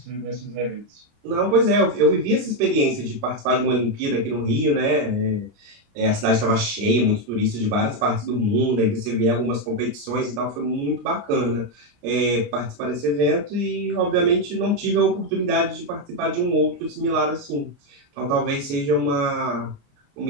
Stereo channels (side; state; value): left; late; 29 ms